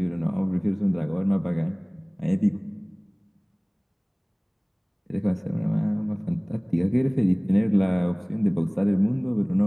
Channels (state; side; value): identical; both; correlation 1.00